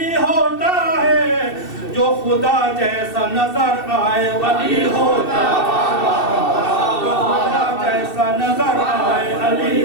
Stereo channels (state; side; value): late; right; 2.7 ms